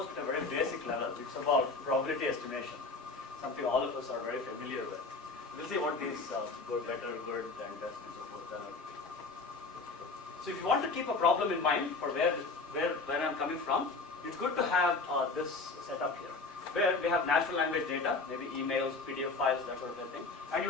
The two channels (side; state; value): right; quieter; 3.9 dB